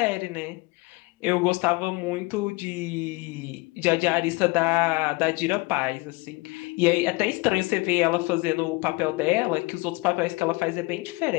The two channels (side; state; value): right; quieter; 24.5 dB